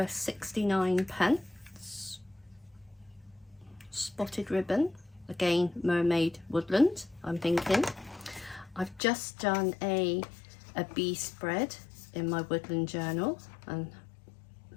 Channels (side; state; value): right; drops out; at 9.0 s